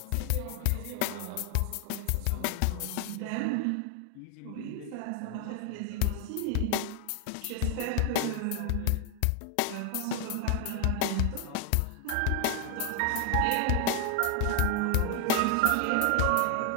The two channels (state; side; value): different; both; correlation 0.00